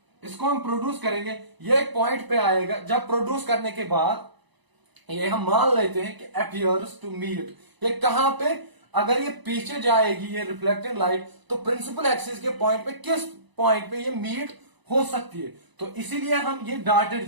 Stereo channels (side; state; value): left; late; 1.0 ms